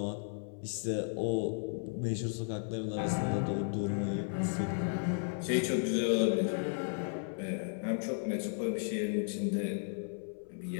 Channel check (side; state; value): right; silent; 55 dB below the other